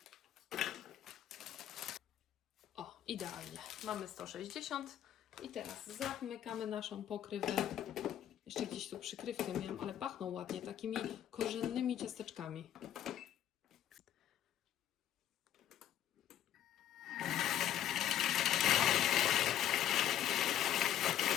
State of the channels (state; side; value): quieter; right; 11.2 dB